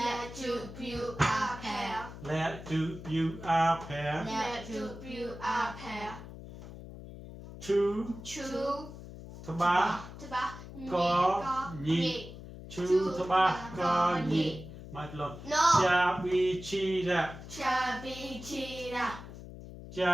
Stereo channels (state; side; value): noise; left; hum, 13 dB below the sound